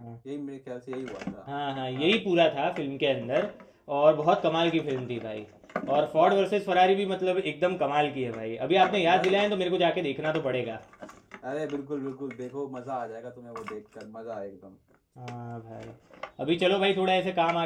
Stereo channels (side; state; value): both; identical; correlation 1.00